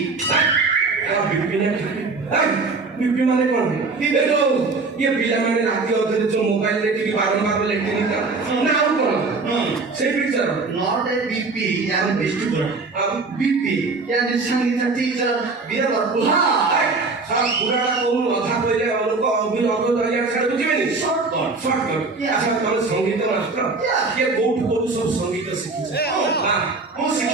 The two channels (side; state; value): left; quieter; 3.9 dB